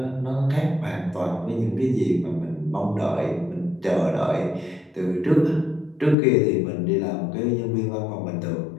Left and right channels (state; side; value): drops out; right; at 6.2 s